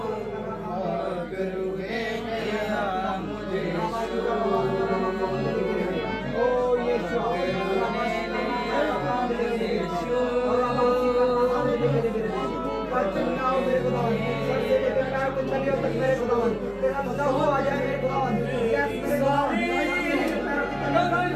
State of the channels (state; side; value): identical; both; correlation 1.00